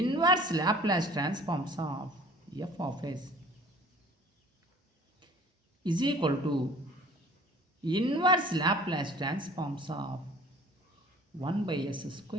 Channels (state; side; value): normal; both; correlation 0.49